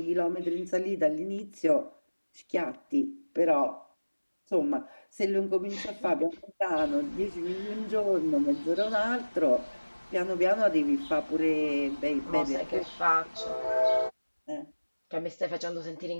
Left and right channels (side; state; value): both; inverted; correlation -1.00